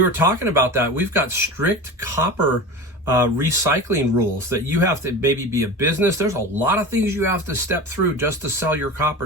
were talking about that. We've got strict copper recycling rules that you have to maybe be a business. There's a lot of things you have to step through just to sell your copper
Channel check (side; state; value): both; normal; correlation 0.30